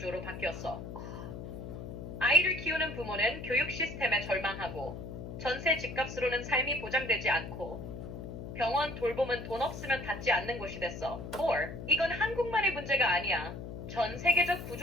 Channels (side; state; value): left; noise; hum, 9 dB below the sound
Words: 바뀌었어. 아이를 키우는 부모는 교육 시스템에 절망하고 전세 집값으로는 삶이 보장되지 않고 병원 돌봄은 돈 없으면 닿지 않는 곳이 됐어. 4. 이건 한국만의 문제가 아니야. 전 세계적